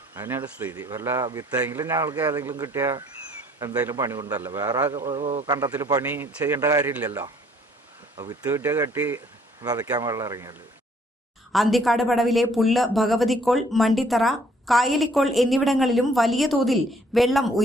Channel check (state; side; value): normal; both; correlation 0.62